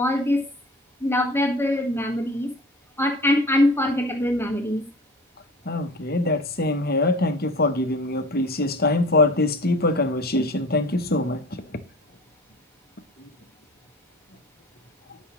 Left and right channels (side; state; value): both; normal; correlation 0.40